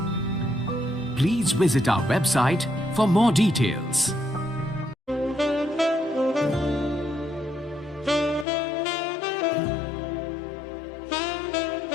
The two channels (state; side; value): drops out; right; at 8.5 s